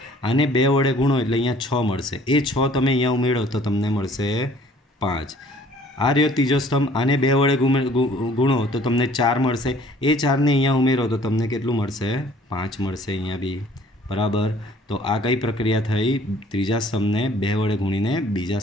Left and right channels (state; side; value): normal; both; correlation 0.55